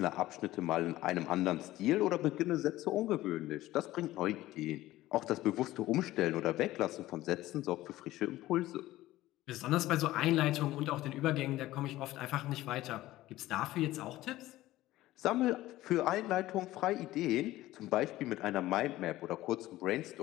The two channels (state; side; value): quieter; right; 16.2 dB